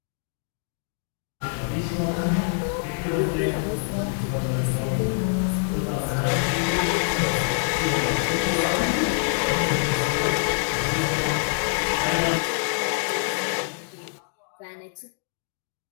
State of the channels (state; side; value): silent; right; 62 dB below the other